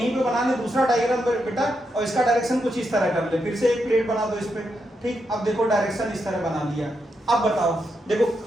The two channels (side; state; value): both; normal; correlation 0.83